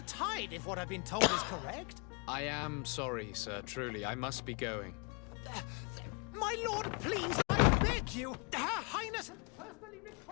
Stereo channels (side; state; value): right; quieter; 34.5 dB